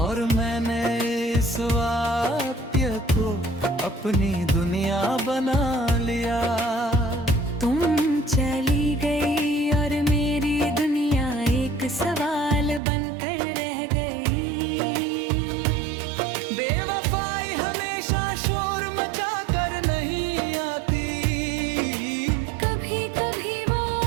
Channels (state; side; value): drops out; left; at 12.8 s